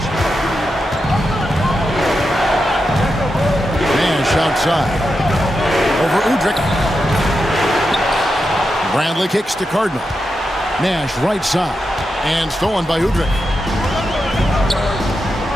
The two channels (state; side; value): normal; both; correlation 0.88